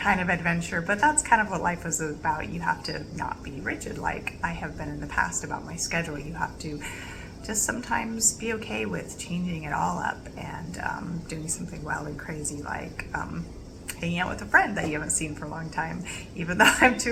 kind of adventure, but that's kind of what life is about. You have to not be rigid like I have been in the past about my schedule. You have to just sometimes be okay with changing it all up and doing something wild and crazy like hanging out with a friend that you haven't seen for a long time, even though I'm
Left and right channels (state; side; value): identical; both; correlation 1.00